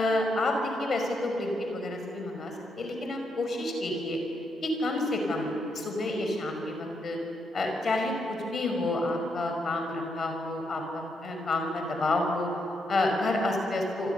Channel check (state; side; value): normal; both; correlation 0.79